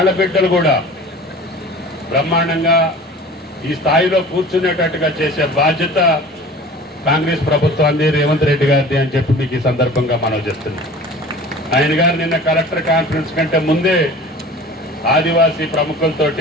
కూడా బ్రహ్మాండంగా ఈ స్థాయిలో కూర్చునేటట్టుగా చేసే బాధ్యత కాంగ్రెస్ ప్రభుత్వాన్ని, రేవంత్ రెడ్డి గారిది అని చెప్పి మీకు ఈ సందర్భంగా మనం చేస్తున్నాం. ఆయన గారు నిన్న కలెక్టర్ కాన్ఫరెన్స్ కంటే ముందే ఆదివాసీ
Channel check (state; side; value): normal; both; correlation 0.41